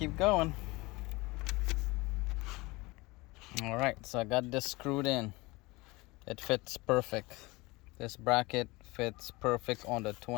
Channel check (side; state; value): right; quieter; 23.1 dB